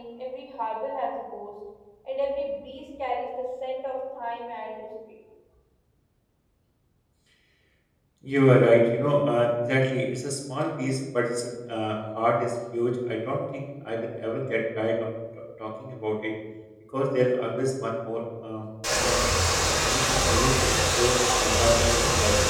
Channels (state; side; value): identical; both; correlation 1.00